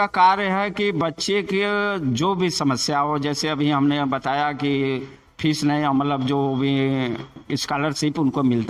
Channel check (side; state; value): both; identical; correlation 1.00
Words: कार्य है कि बच्चे के जो भी समस्या हो, जैसे अभी हमने बताया कि फीस नहीं, मतलब जो भी स्कॉलरशिप उनको